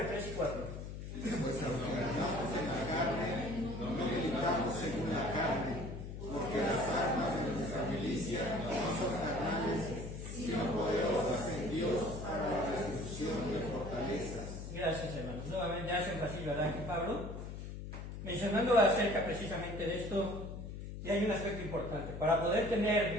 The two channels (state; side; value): noise; left; hum, 8 dB below the sound